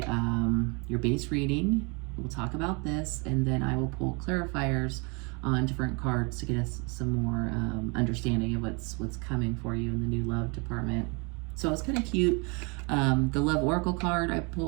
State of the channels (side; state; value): left; quieter; 31.6 dB